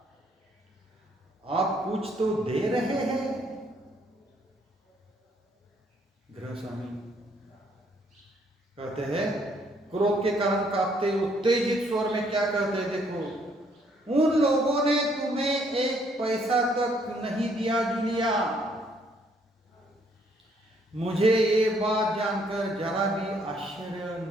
आप कुछ तो दे रहे हैं. गृह स्वामी कहते हैं, क्रोध के कारण कांपते उत्तेजित स्वर में क्या कहते हैं, देखो, उन लोगों ने तुम्हें 1 पैसा तक नहीं दिया जूलिया. मुझे ये बात जानकर जरा भी आश्चर्य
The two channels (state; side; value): normal; both; correlation 0.67